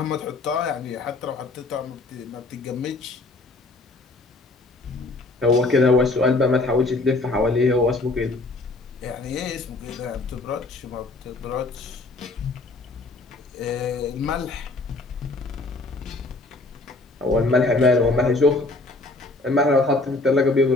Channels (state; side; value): quieter; right; 3.1 dB